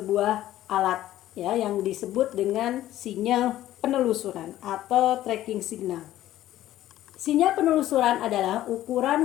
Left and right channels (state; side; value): quieter; right; 13.8 dB